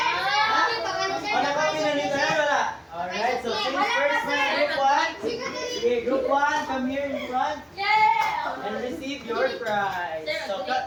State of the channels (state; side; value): identical; both; correlation 1.00